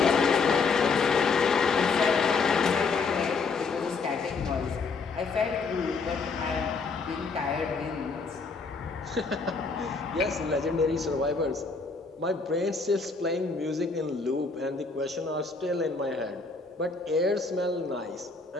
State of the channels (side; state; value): right; quieter; 4.4 dB